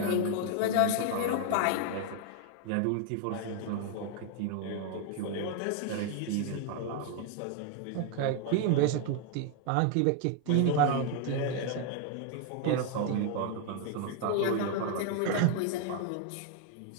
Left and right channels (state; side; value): different; both; correlation 0.00